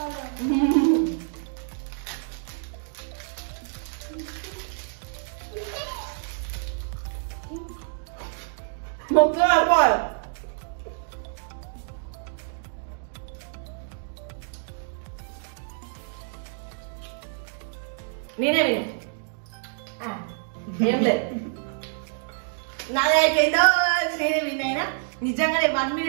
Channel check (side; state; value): left; silent; digital silence